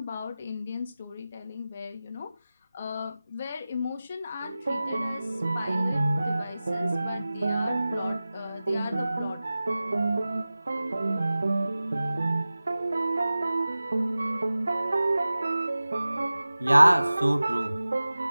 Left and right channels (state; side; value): inverted; both; correlation -0.96